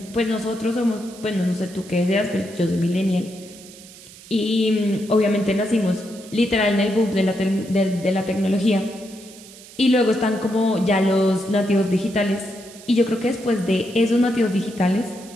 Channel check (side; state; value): right; noise; hiss, 19 dB below the sound